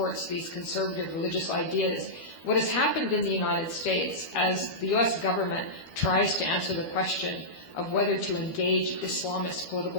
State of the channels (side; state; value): right; late; 12 ms